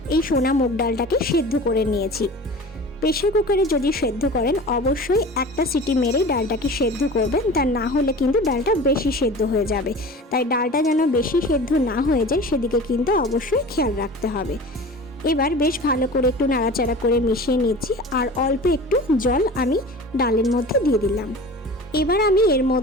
এই সোনা মুগ ডালটাকে সেদ্ধ করে নিয়েছি। প্রেসার কুকারে যদি সেদ্ধ করেন অবশ্যই একটা সিটি মেরেই ডালটাকে সেদ্ধ করবেন, তা না হলে কিন্তু ডালটা বেশি সেদ্ধ হয়ে যাবে। তাই ডালটা যেন বেশি সেদ্ধ না হয়ে যায় সেদিকে কিন্তু অবশ্যই খেয়াল রাখতে হবে। এবার বেশ ভালো করে একটু নাড়াচাড়া করে মিশিয়ে নিচ্ছি। আর অল্প একটু জল আমি ডালের মধ্যে দিয়ে দিলাম। এবার আমি এর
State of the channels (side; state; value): both; normal; correlation 0.38